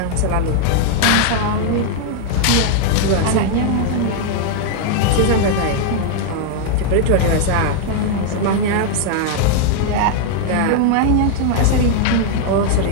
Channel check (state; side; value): different; both; correlation 0.00